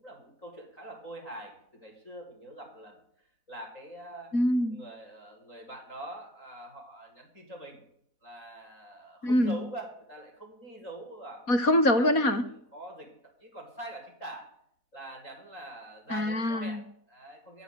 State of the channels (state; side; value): late; right; 4.1 ms